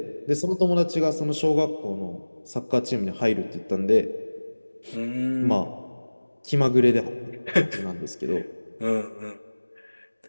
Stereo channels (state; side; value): inverted; both; correlation -1.00